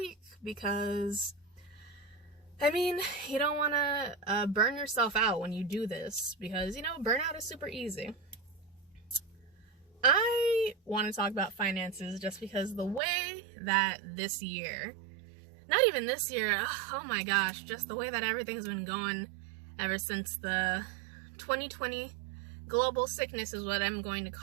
because, I mean, you don't want to burn yourself out when you do this because, you know, burnout is super easy. I want to talk about finances just because the way that this year, not even this year, oh my gosh, just the way that everything's been going ever since the 2020 global sickness is what I'm going to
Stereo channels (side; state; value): left; drops out; at 13.0 s